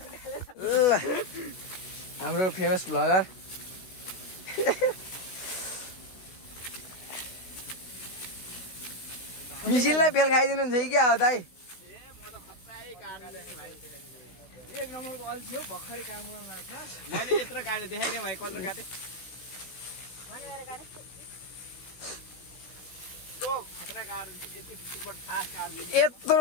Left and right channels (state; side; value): late; right; 16 ms